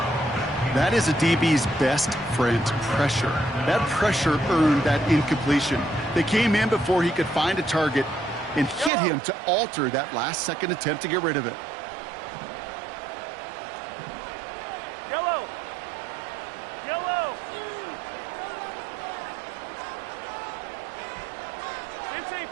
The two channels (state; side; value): drops out; left; at 8.9 s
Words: That is a DB's best friend, pressure. That pressure earned that incompletion. They came in before he could find a target and hit him to alter that last-second attempt to get rid of it. Yellow. Yellow. 15,